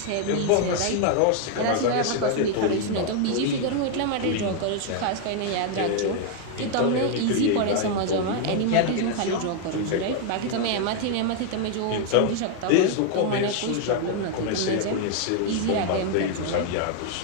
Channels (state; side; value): different; both; correlation 0.00